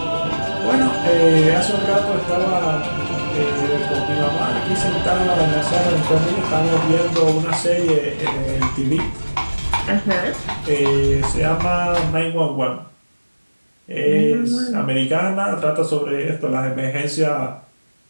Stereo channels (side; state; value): both; inverted; correlation -1.00